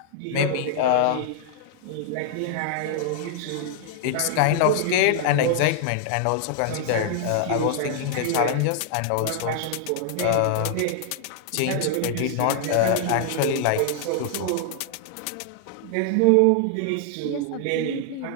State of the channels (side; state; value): both; different; correlation -0.01